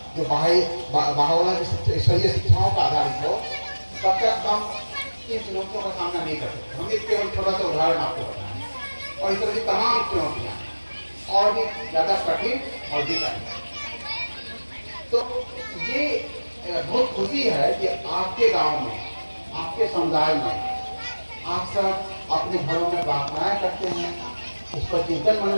जो भावना की ईश्वरीय शिक्षाओं का आधारित हो, तब तक हम इन चुनौतियों का सामना नहीं कर सकते। हम एक केवल छोटा सा उदाहरण आपको बताएं, और इस तरह की तमाम चुनौतियां और भी ज्यादा कठिन और भी कठिन। तो ये बहुत खुशी है कि आपके गांव में, आपके समुदाय में आप सब अपने घरों में प्रार्थनाएं करते हैं, उस पर चिंतन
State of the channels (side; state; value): both; inverted; correlation -1.00